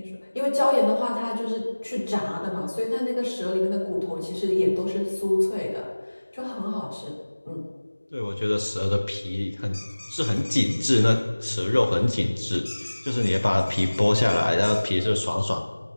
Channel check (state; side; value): inverted; both; correlation -1.00